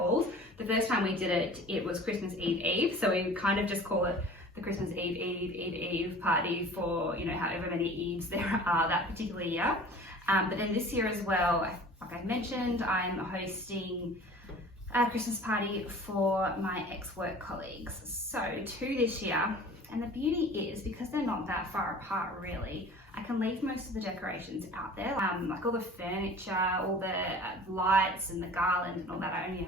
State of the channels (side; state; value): both; normal; correlation 0.43